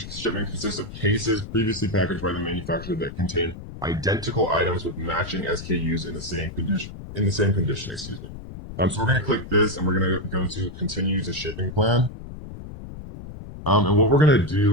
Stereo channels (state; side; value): noise; left; rumble, 12 dB below the sound